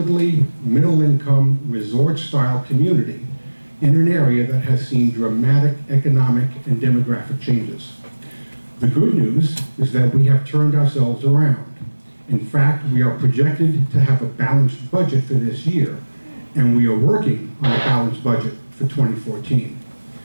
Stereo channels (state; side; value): inverted; both; correlation -1.00